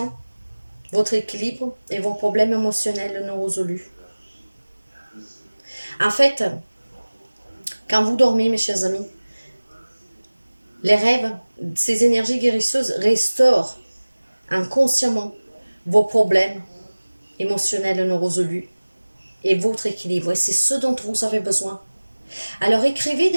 votre équilibre et vos problèmes émotionnels non résolus. En fait, quand vous dormez, mes chers amis, les rêves, ces énergies guérisseuses restaurent inconsciemment vos problèmes émotionnels non résolus et votre équilibre. Et c'est ce dont vous avez besoin. Alors écrivez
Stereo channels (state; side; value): inverted; both; correlation -1.00